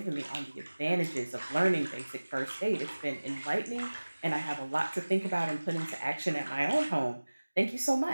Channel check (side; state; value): both; inverted; correlation -1.00